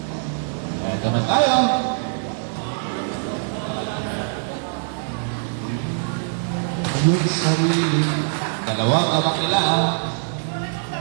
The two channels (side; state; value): left; silent; digital silence